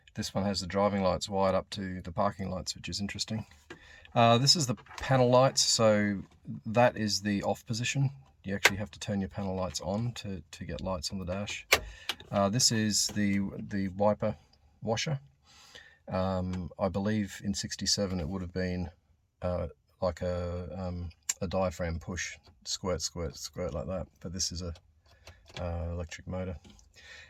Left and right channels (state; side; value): identical; both; correlation 1.00